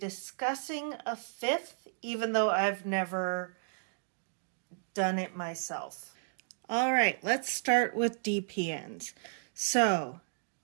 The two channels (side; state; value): left; silent; digital silence